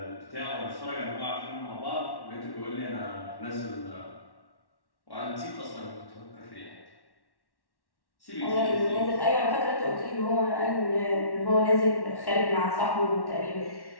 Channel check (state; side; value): late; right; 1.1 ms